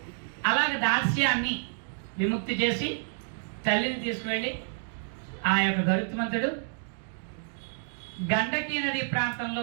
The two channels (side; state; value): left; silent; digital silence